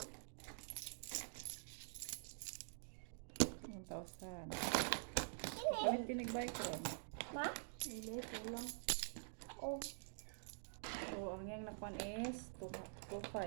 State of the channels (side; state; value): left; silent; digital silence